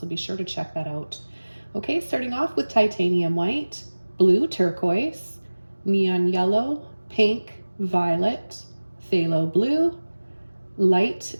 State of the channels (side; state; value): both; inverted; correlation -1.00